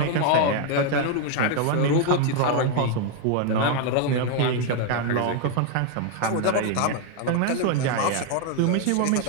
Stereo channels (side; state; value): both; different; correlation 0.01